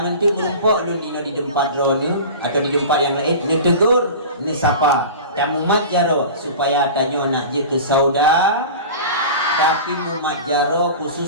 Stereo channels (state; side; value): inverted; both; correlation -0.34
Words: nanti merumpok lu di tempat drone atau di tempat yang lain, ni tegur, ni sapa, dan mumat jaro supaya tanya nak je ke sauda, tapi mumat jaro